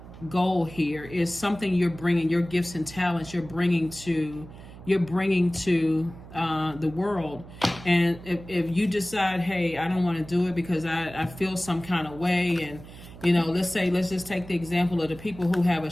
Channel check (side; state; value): right; noise; hum, 17 dB below the sound